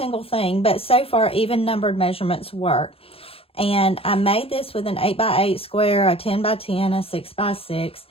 thing, but so far, even numbered measurements work. And I made this with an 8x8 square, a 10x10, a 6x6.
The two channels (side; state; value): right; late; 0.27 ms